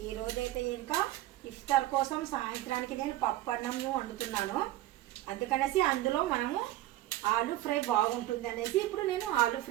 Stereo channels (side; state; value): left; quieter; 15.3 dB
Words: ఈరోజైతే ఇంకా ఇఫ్తార్ కోసం సాయంత్రానికి నేను పప్పు అన్నం వండుతున్నాను. అందుకనేసి అందులో మనము ఆలు ఫ్రై బాగుంటుంది అనేసి ఇప్పుడు నేను ఆలు